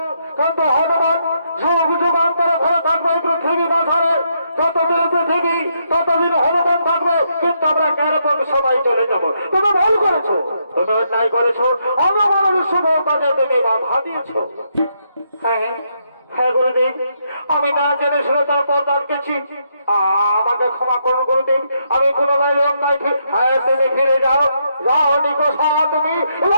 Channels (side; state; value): both; inverted; correlation -0.77